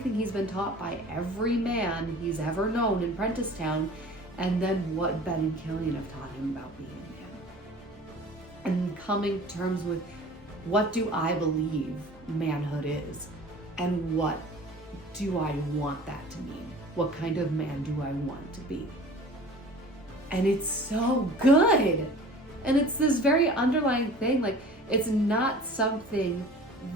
he's been taught by every man he's ever known in Prenticetown, and then what Ben and Killian have taught him about being a man. And coming to terms with, what do I believe manhood is? And what do I want that to mean? What kind of man do I want to be? And it's so good. And it's this very underlying thing, like, it's not something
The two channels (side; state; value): both; normal; correlation 0.44